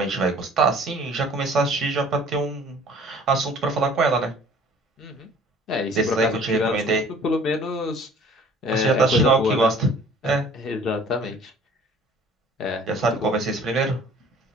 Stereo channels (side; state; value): both; normal; correlation 0.51